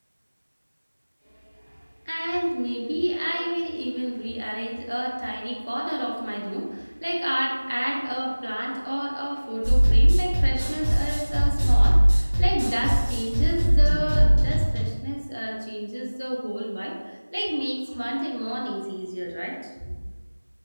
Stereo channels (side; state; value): both; inverted; correlation -1.00